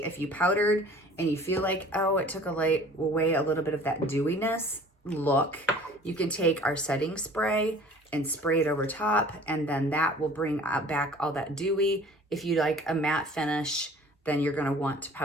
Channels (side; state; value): both; normal; correlation 0.48